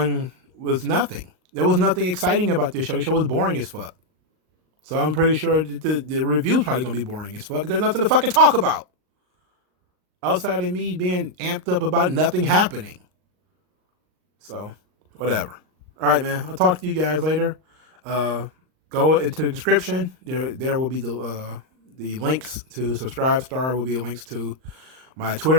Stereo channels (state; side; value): late; left; 38 ms